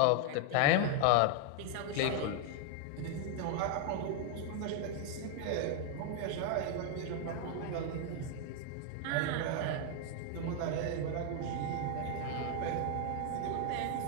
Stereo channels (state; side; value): different; both; correlation 0.00